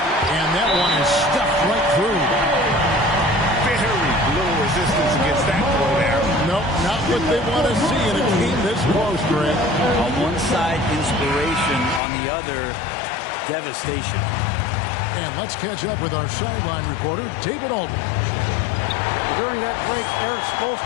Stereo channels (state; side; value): drops out; right; at 12.0 s